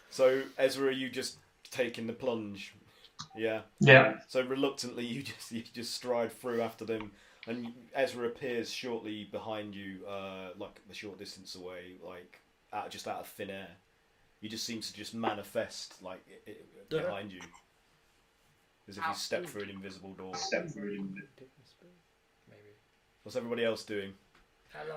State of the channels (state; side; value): identical; both; correlation 1.00